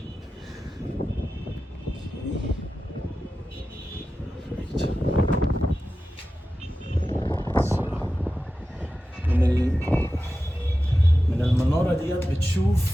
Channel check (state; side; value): normal; both; correlation 0.93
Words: من المنارة ديت